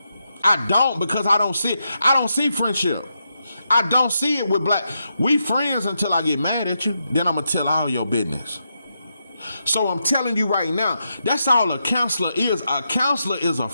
because I don't see it. I don't see friendship. I don't see it with black. We friends until I get mad at you. Then I'm going to tell all your business. So I'm telling you right now, that's all a counselor is. A counselor is a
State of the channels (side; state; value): both; inverted; correlation -0.84